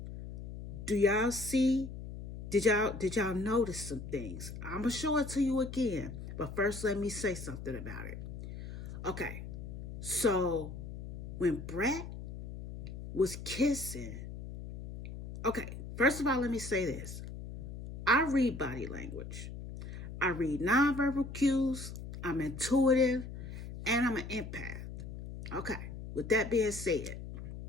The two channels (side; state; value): left; noise; hum, 10 dB below the sound